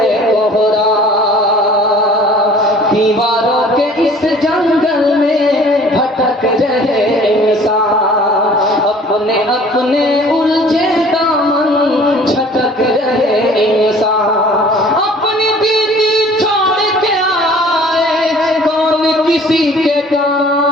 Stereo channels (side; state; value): both; normal; correlation 0.50